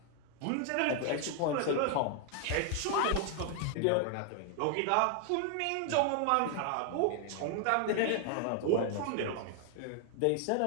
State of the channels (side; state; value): both; different; correlation 0.00